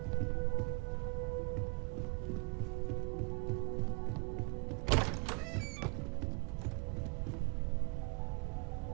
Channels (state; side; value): quieter; left; 32.4 dB